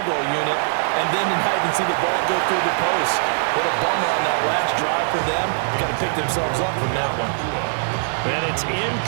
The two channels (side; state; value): left; silent; digital silence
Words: goal unit, and then to not even see the ball go through the post. What a bummer on that last drive for them. Got to pick themselves up from that one. And it's